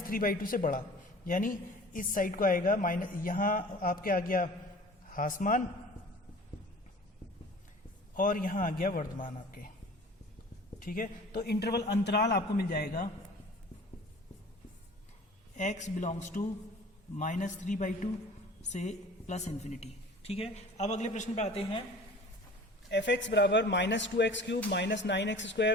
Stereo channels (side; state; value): both; normal; correlation 0.44